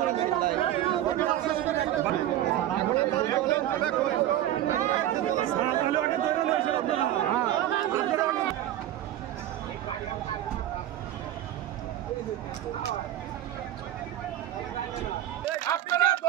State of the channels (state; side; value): quieter; left; 12.7 dB